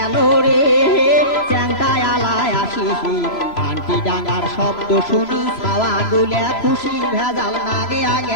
রে চ্যাংটায় আলায় আসিসি ঘান্টি ডাঙার শব্দ শুনি ছাওয়া গুলে খুশি ভেজাল নাগে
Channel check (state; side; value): late; right; 3.0 ms